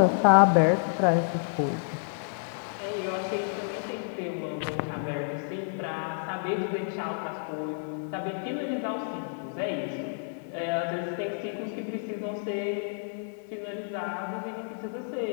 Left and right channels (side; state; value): right; silent; digital silence